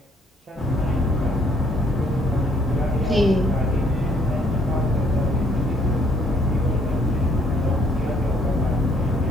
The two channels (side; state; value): both; normal; correlation 0.66